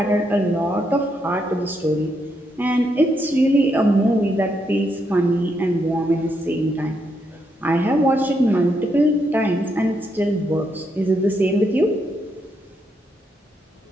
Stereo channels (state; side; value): normal; both; correlation 0.79